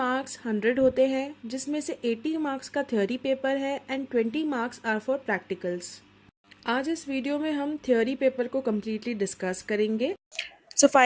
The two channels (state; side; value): identical; both; correlation 1.00